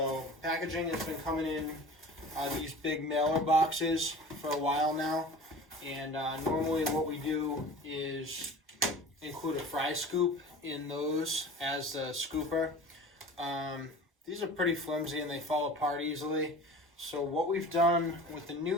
packaging has been coming in these big mailer boxes for a while now. And normally what we do is include a fry scoop in those as the scooper. These are pretty flimsy and they fall apart easily. So what we've done with the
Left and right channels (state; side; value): normal; both; correlation 0.39